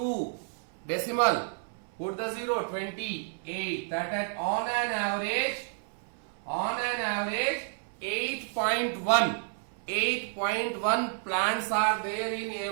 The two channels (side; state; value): left; silent; 58 dB below the other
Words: Decimal. Put the 0, 28. That at on an average 8.1. 8.1 plants are there in